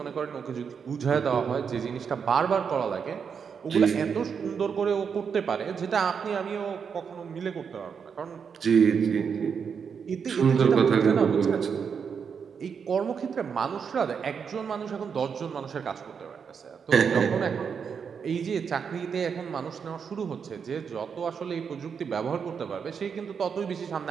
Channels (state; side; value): quieter; left; 6.5 dB